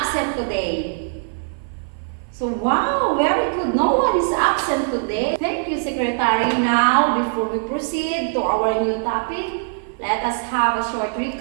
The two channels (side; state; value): left; silent; 57 dB below the other